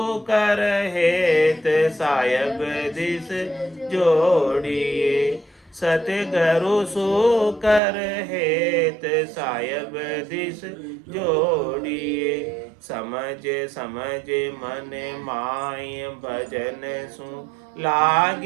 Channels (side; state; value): left; drops out; at 7.8 s